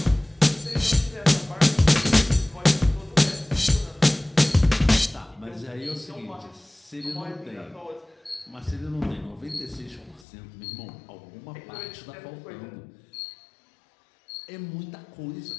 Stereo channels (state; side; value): drops out; right; at 10.2 s